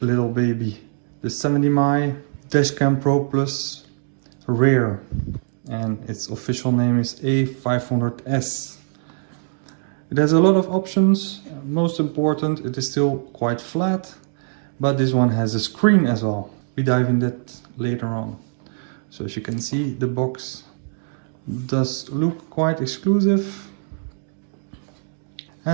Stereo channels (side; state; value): left; silent; digital silence